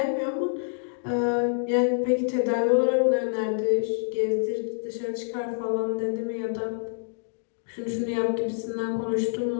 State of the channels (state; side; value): silent; right; digital silence